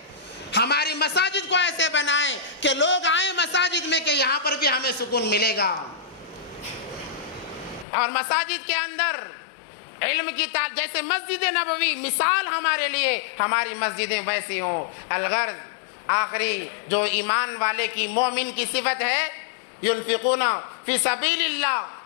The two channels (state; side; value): drops out; right; at 7.9 s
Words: ہماری مساجد کو ایسے بنائیں کہ لوگ آئیں مساجد میں کہ یہاں پر بھی ہمیں سکون ملے گا، اور مساجد کے اندر علم کی جیسے مسجد نبوی مثال ہمارے لیے، ہماری مسجدیں ویسی ہوں۔ الغرض آخری جو ایمان والے کی، مومن کی صفت ہے، ينفقون فی سبیل اللہ